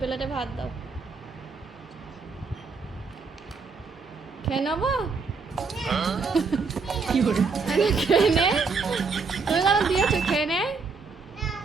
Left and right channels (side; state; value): left; quieter; 4.7 dB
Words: ভাত দাও। খেয়ে নেবো? খেয়ে নে। তুমি কেন দিয়েছো? খেয়ে নে,